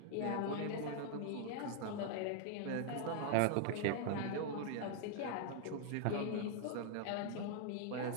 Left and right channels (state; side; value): different; both; correlation 0.00